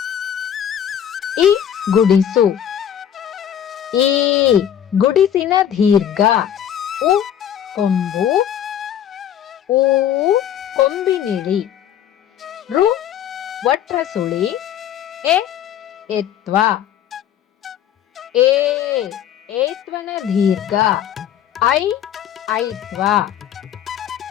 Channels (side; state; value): right; quieter; 10.0 dB